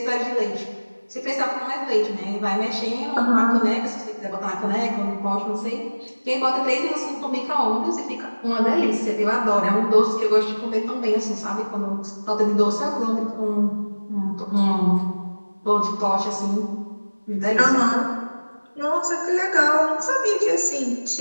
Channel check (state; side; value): inverted; both; correlation -1.00